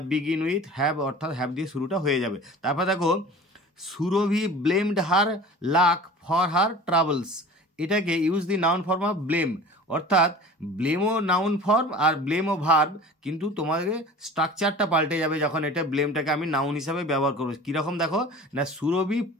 বিগিন উইথ হ্যাভ অর্থাৎ হ্যাভ দিয়ে শুরুটা হয়ে যাবে। তারপর দেখো Surabhi blamed her luck for her travels, এটাকে use the noun form of blame, অর্থাৎ ব্লেমও নাউন ফর্ম আর ব্লেমও ভার্ব, কিন্তু তোমাদের স্ট্রাকচারটা পাল্টে যাবে যখন এটা ব্লেমটাকে আমি নাউন হিসাবে ব্যবহার করবো। কীরকম দেখো না, Surabhi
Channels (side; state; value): both; normal; correlation 0.40